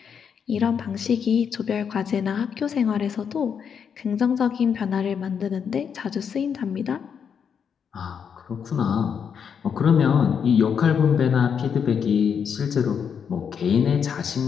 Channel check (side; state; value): right; quieter; 7.2 dB